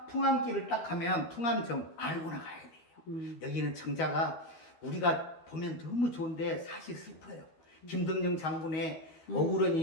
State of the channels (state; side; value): late; right; 12 ms